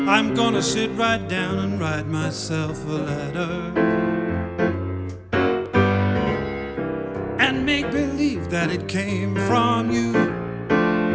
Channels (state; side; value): identical; both; correlation 1.00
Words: I'm gonna sit right down and write myself a letter, and make believe that it came from you.